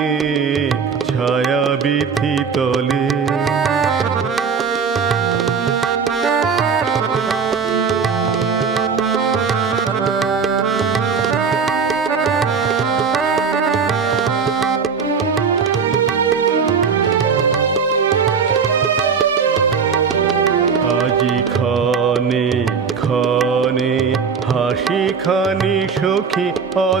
ছায়া বিথি তলে। আজি ক্ষণে ক্ষণে হাসি খানি সখী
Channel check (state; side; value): quieter; left; 5.9 dB